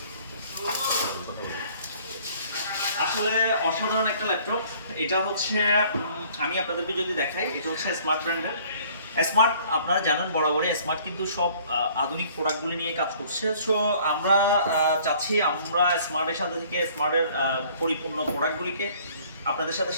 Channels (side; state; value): both; inverted; correlation -0.56